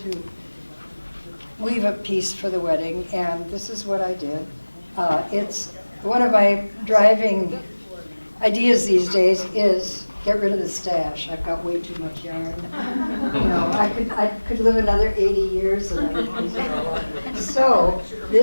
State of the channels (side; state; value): both; inverted; correlation -1.00